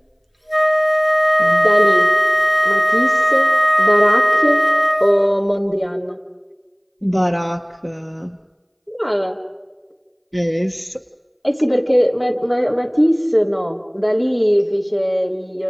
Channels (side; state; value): both; identical; correlation 1.00